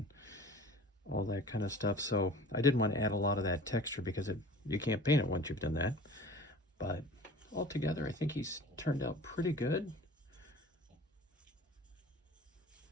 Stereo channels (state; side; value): normal; both; correlation 0.43